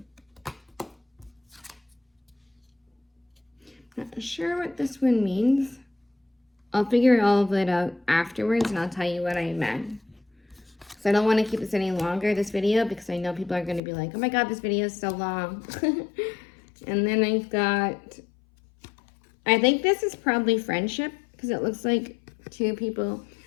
Not sure what this one means. I'll figure all of it out afterwards and I'll tell you what I meant. So I don't want to keep this any longer, this video, because I know people are going to be like, oh my god, this video is so long. And then I've got, I think this is probably friendship, because it looks like two people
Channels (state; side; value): drops out; right; at 13.8 s